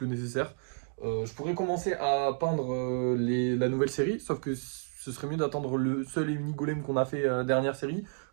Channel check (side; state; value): left; silent; digital silence